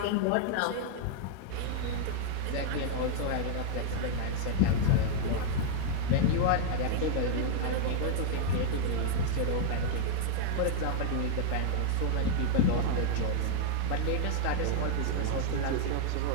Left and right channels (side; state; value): both; different; correlation 0.00